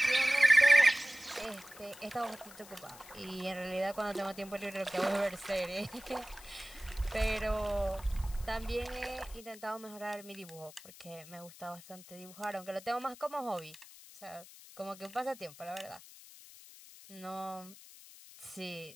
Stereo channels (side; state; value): left; noise; hiss, 19 dB below the sound